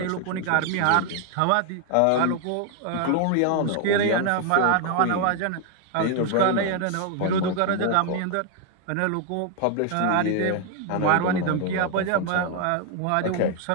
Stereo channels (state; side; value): different; both; correlation 0.01